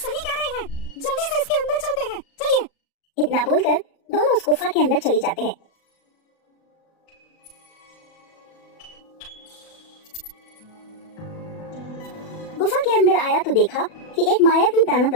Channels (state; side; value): late; right; 36 ms